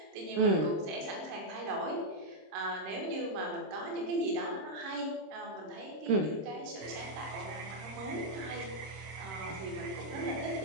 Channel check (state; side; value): late; left; 26 ms